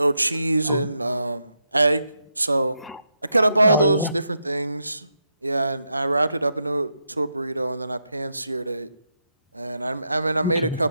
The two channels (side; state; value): both; inverted; correlation -0.83